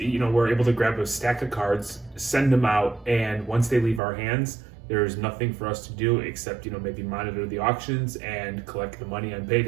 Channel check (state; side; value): drops out; left; at 4.0 s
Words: know, we're able to grab a stack of cards, send them out, and once they leave our hands, there's nothing for us to do except, you know, maybe monitor the auctions and collect the money on